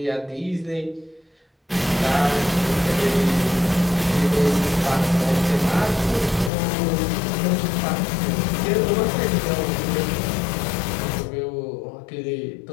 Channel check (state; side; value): drops out; right; at 6.5 s